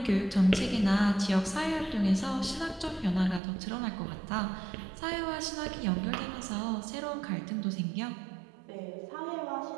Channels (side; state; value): left; drops out; at 3.4 s